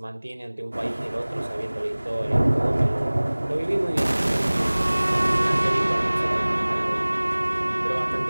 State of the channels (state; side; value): inverted; both; correlation -1.00